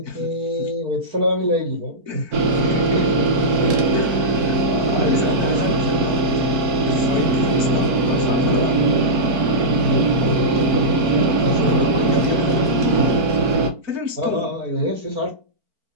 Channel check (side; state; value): left; late; 4.5 ms